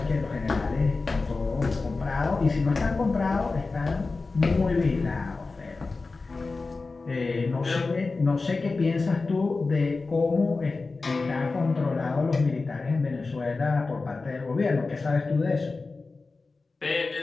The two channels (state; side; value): quieter; right; 3.8 dB